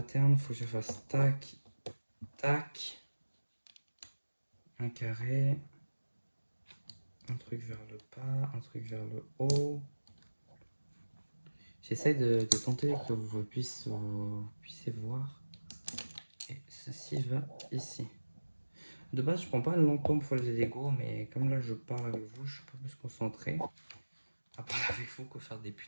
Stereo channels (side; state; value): both; inverted; correlation -1.00